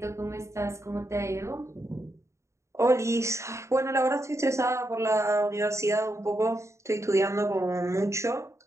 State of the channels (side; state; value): left; late; 0.14 ms